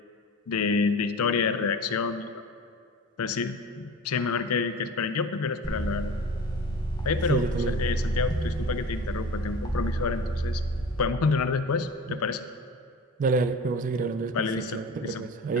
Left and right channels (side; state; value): both; normal; correlation 0.36